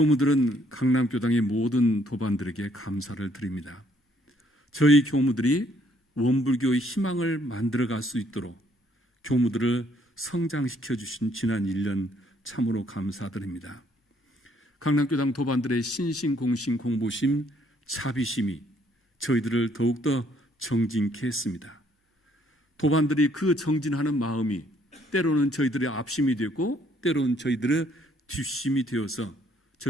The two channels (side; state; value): both; normal; correlation 0.67